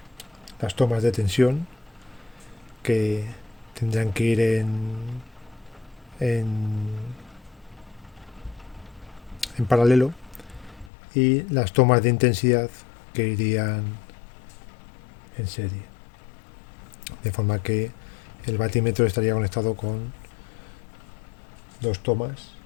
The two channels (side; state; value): right; drops out; at 10.9 s